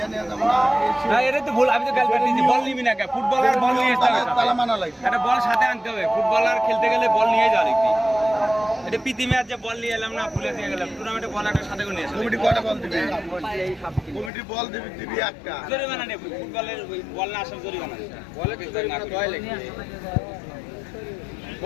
ফুটবলার বল নিয়ে একটা বল সাথে আনতে হবে। ফুটবলার খেলতে গেলে বল নিয়ে যাওয়া লিখবি। এটা প্রীতি ম্যাচ যে বল নিয়ে এলাম না, ভুলে দিয়ে গেলাম। টুর্নামেন্টে বল একটা সাথে করে নিয়ে আসলাম। কমিটি কয়টা বল দিবে? কমিটি বল দিবি একটা। জরিমানা নেব। ফুটবলের বল না আসার জরিমানা। বলে তো জরিমানা কয় লাগবে?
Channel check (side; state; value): right; drops out; at 14.3 s